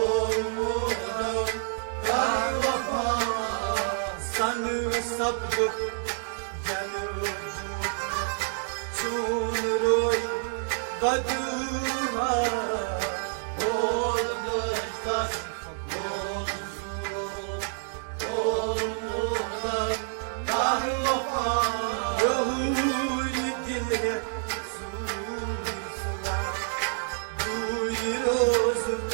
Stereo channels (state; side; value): silent; left; digital silence